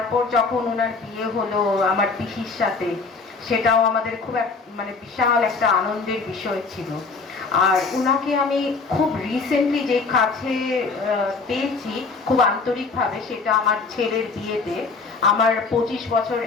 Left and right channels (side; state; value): right; quieter; 4.3 dB